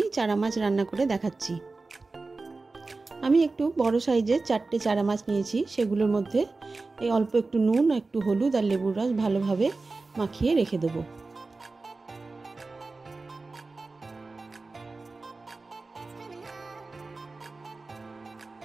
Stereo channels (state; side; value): quieter; left; 3.6 dB